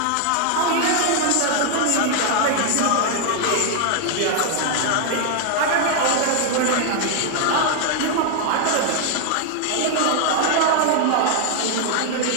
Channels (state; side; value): different; both; correlation 0.00